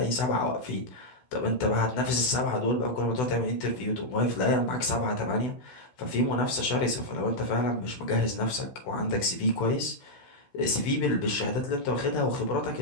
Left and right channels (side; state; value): right; late; 16 ms